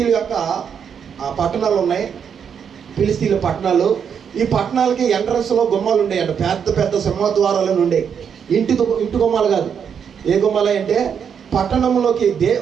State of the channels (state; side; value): quieter; left; 7.4 dB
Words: యొక్క పట్టణాలు ఉన్నాయి, ఫిలిస్తీన్ల పట్టణాలు. ఈ పట్టణాలకి ఎంట్రన్స్లో గుమ్మాలు ఉండేయంట, పెద్ద పెద్ద సింహద్వారాలను ఉండే. ఇంటి గుమ్మాలు కాదు. ఏ గుమ్మాలు అంటే పట్టణంలోకి